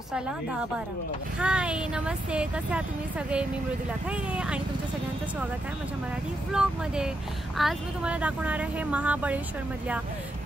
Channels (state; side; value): normal; both; correlation 0.83